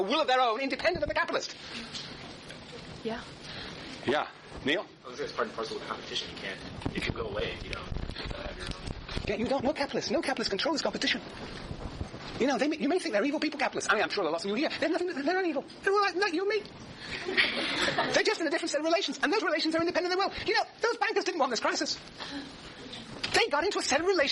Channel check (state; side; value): identical; both; correlation 1.00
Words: will of their own, independent of the capitalist? Yeah. Yeah. Neil? I was going to say it's part and parcel of competition. You can go away if you don't have your own. Yeah, you don't. No capitalists. No capitalists control this competition. You know, you may think they're evil people, capitalists. I mean, I'm sure there are lots of you here. They're not evil. They're all like you and me. They're just in a different set of relations. And those relations are independent of their will. You know, those bankers didn't want this crisis. They got into a set of